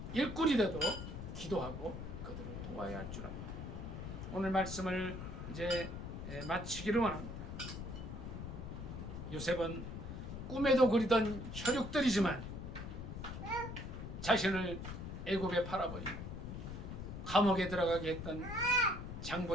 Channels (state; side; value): noise; left; rumble, 7 dB below the sound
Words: 일꾼이 되도록 기도하고 그들을 도와야 할 줄 압니다. 오늘 말씀을 이제 마치기를 원합니다. 요셉은 꿈에도 그리던 혈육들이지만 자신을 애굽에 팔아버린 감옥에 들어가게 했던